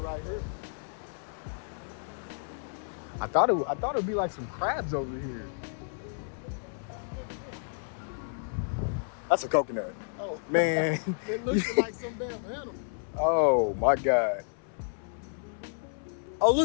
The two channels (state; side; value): silent; right; 57 dB below the other